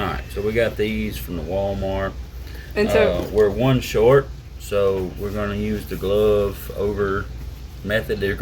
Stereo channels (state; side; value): identical; both; correlation 1.00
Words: so we got these from the Walmart. And so we're one short, so we're going to use the glove over method. They're